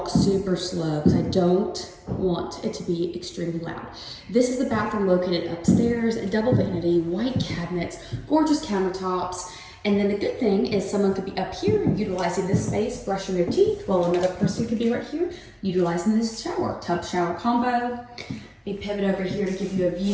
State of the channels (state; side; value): identical; both; correlation 1.00